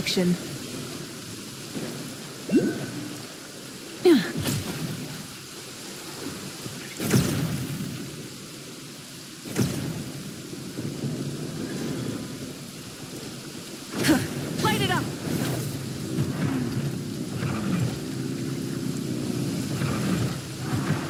Light it up!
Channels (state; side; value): identical; both; correlation 1.00